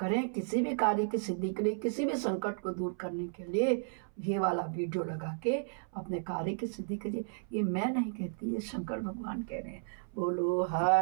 किसी भी कार्य की सिद्धि के लिए, किसी भी संकट को दूर करने के लिए ये वाला वीडियो लगा के अपने कार्य की सिद्धि करिए। ये मैं नहीं कहती, ये शंकर भगवान कह रहे हैं। बोलो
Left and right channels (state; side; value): silent; left; 55 dB below the other